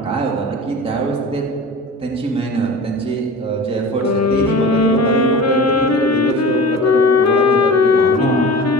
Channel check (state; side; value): normal; both; correlation 0.36